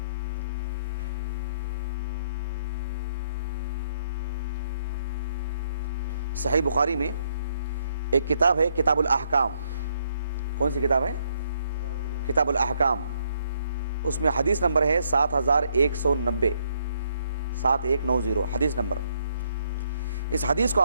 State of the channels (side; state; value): both; inverted; correlation -0.71